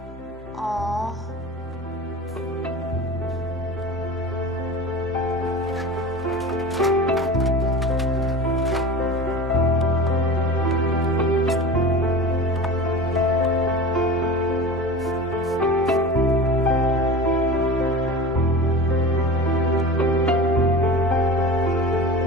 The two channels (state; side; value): normal; both; correlation 0.33